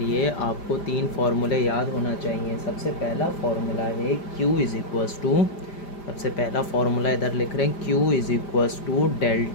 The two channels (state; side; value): late; right; 5.0 ms